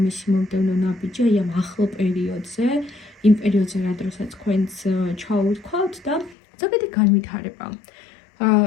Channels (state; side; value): drops out; right; at 6.4 s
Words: მისი მომდევნო ნაბიჯი აი ამ ახლო პერიოდზე, იმ პერიოდზე, რა დროსაც თქვენს ჩაუვთქვათ და ზოგადი განვითარება.